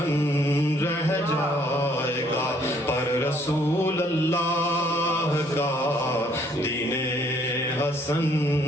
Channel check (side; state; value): both; normal; correlation 0.64